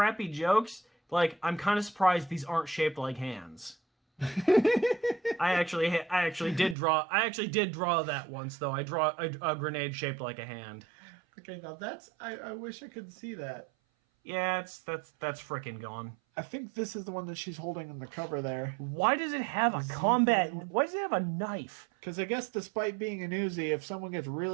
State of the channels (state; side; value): drops out; left; at 6.8 s